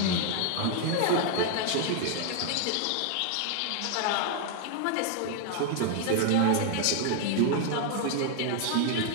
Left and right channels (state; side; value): different; both; correlation 0.00